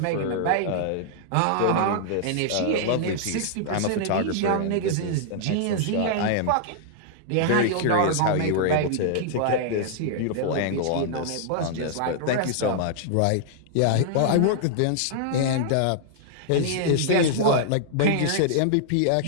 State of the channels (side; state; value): both; different; correlation -0.01